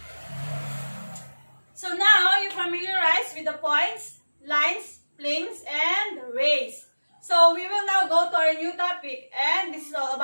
So now you're familiarized with the points, lines, planes, and rays. So we will now go to our new topic, and this is all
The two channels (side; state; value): both; inverted; correlation -1.00